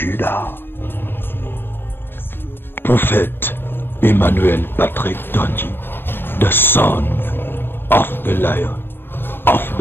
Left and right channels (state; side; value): late; right; 0.10 ms